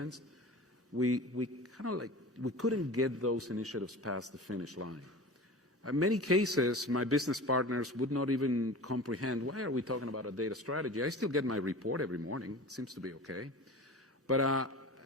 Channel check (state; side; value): normal; both; correlation 0.35